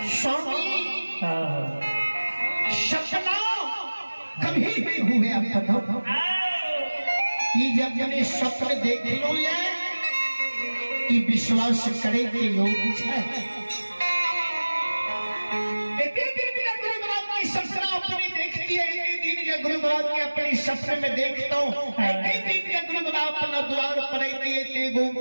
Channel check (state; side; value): inverted; both; correlation -1.00